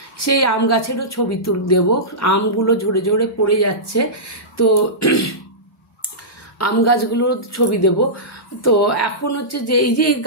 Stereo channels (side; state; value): both; normal; correlation -0.17